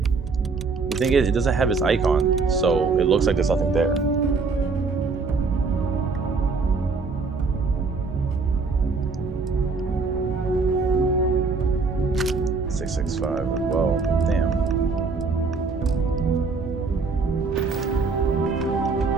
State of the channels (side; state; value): left; quieter; 4.4 dB